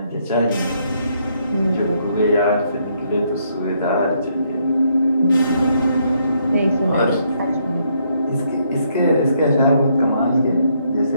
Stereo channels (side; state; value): both; inverted; correlation -0.73